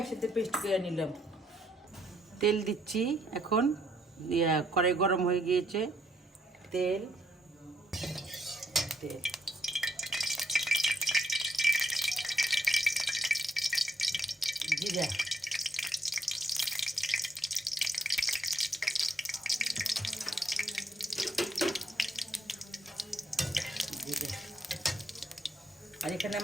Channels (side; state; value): both; normal; correlation 0.73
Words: পেস্ট করে নিলাম। তেল দিচ্ছি এখন, কড়াই গরম হয়ে গিয়েছে। তেল তেল জিরা, জিরা, আর এখানে